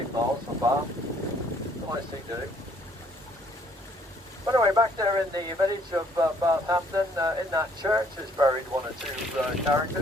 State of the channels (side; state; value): both; normal; correlation 0.63